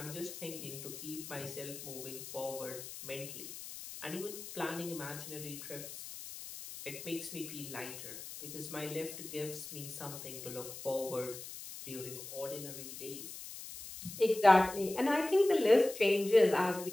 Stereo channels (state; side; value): noise; left; hiss, 11 dB below the sound